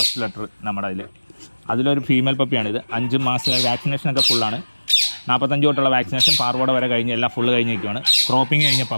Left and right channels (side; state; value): both; inverted; correlation -1.00